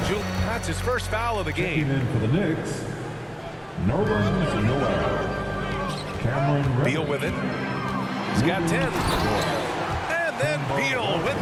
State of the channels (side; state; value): both; identical; correlation 1.00